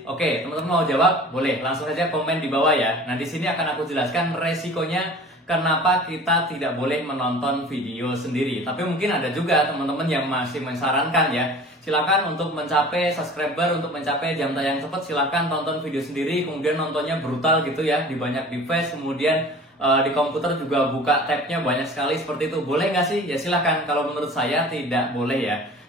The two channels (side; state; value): both; normal; correlation 0.42